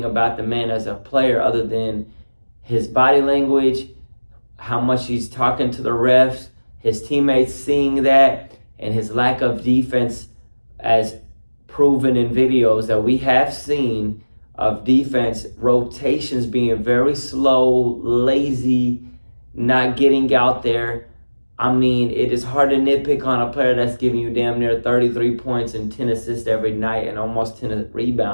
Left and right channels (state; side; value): inverted; both; correlation -1.00